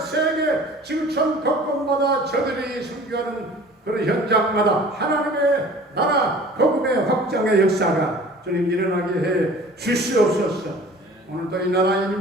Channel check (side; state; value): both; normal; correlation 0.46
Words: 지구촌 곳곳마다 저들이 선교하는 그런 현장마다 하나님의 나라 복음의 확장의 역사가 주님 일어나게 해 주시옵소서. 오늘도 이 나라 이